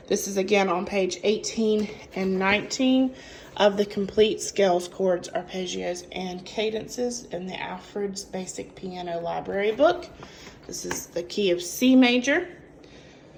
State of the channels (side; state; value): both; identical; correlation 1.00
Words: This is again on page 18 and 19 of the Complete Scales, Chords, Arpeggios, and Cadences in the Alfred's Basic Piano Library book. This is the key of C major.